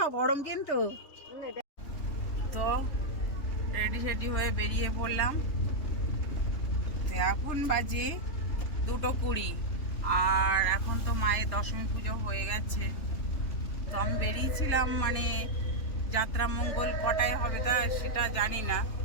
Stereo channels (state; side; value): late; right; 3.4 ms